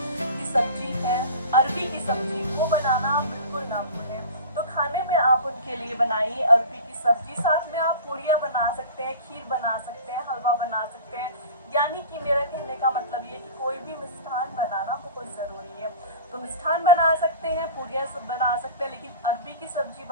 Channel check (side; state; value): both; inverted; correlation -0.37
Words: की सब्जी है, अरबी की सब्जी, वो बनाना बिल्कुल ना भूलें। तो खाने में आप उनके लिए बनाइए अरबी की सब्जी, साथ में आप पूड़ियाँ बना सकते हैं, खीर बना सकते हैं, हलवा बना सकते हैं। यानी कि मेरा कहने का मतलब ये कि कोई भी मिष्ठान बनाना बहुत ज़रूरी है। तो मिष्ठान बना सकते हैं, पूड़ियाँ सब बना सकते हैं, लेकिन अरबी की सब्जी